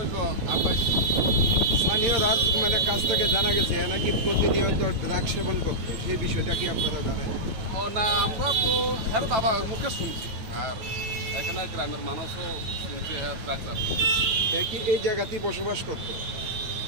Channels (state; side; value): late; left; 9.2 ms